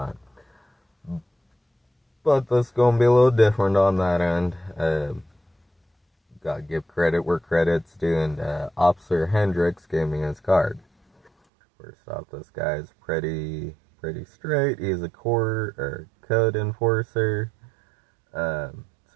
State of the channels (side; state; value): left; drops out; at 11.3 s